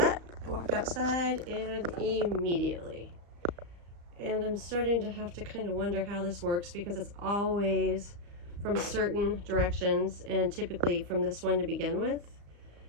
I walk outside and immediately. And I'm starting to have to kind of wonder how this works, because it's always from certain directions, and typically from this one to begin with.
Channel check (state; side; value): late; left; 35 ms